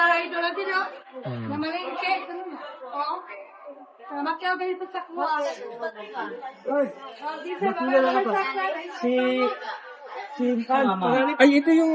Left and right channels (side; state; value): both; identical; correlation 1.00